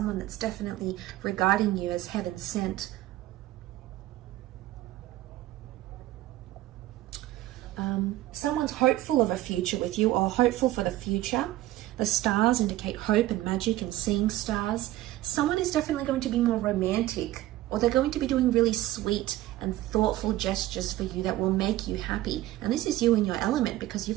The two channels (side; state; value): left; quieter; 15.6 dB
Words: that's definitely regarding you as heaven sent. Someone's hopeful of a future with you, or hopeful for the future. The stars indicate hope and magic and seeing stars. Someone is definitely going to be more romantic, or they're going to be doing really sweet and thoughtful gestures for you that will make you happy. And this is you in your element, because